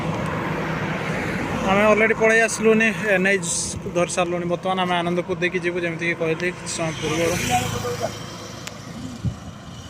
आम अलरेडी पलि आसलुनि एनएच धरी सारूँ बर्तमान आम आनंदपुर देखिए जीव जमीक कहली समय पूर्व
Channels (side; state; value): both; identical; correlation 1.00